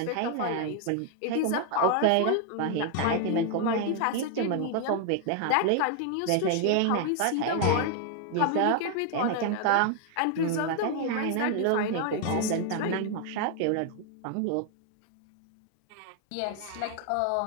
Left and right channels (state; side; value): different; both; correlation 0.00